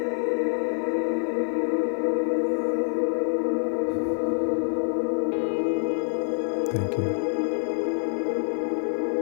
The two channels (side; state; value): right; silent; 56 dB below the other